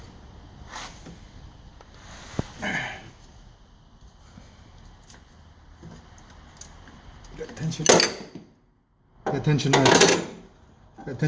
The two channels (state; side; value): identical; both; correlation 1.00